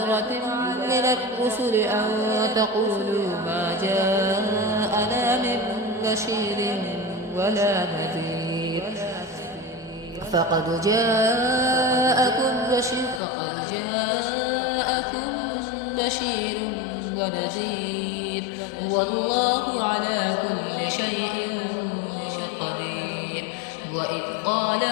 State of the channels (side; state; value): right; drops out; at 13.2 s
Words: من الرسل أن تقولوا ما جاءنا من بشير ولا نذير فقد جاءكم بشير ونذير والله على كل شيء قدير. وإذ قال